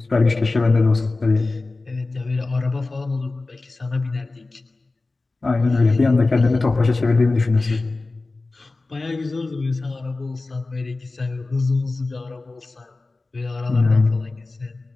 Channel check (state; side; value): quieter; right; 3.4 dB